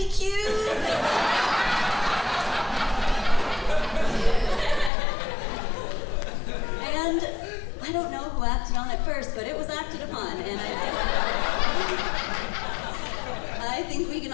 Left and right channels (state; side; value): drops out; right; at 4.9 s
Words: cute. And I don't know who acted on it first, but it was acted upon. And I think we can